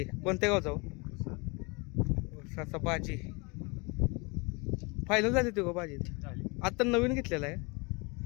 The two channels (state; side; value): quieter; right; 29.0 dB